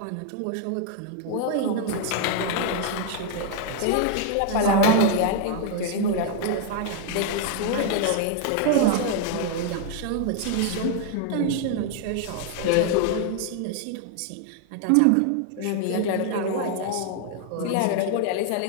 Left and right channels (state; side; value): different; both; correlation 0.00